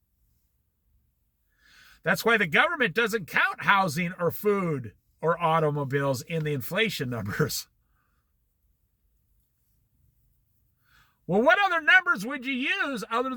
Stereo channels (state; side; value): identical; both; correlation 1.00